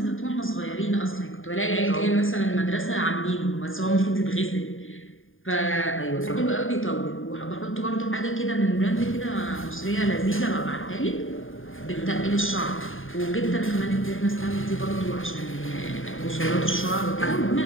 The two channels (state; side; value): late; right; 0.59 ms